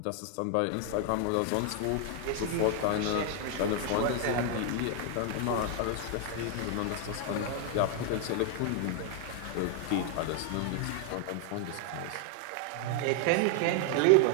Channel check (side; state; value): both; different; correlation 0.00